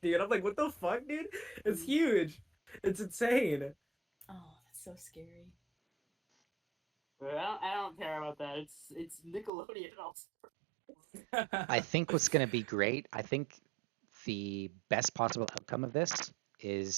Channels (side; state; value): left; drops out; at 9.5 s